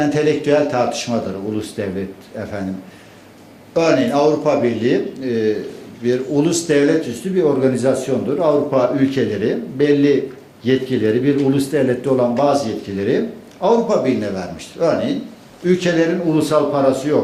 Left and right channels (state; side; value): identical; both; correlation 1.00